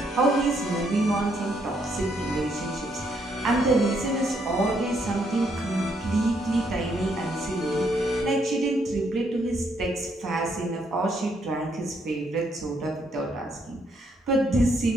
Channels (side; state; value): both; normal; correlation 0.73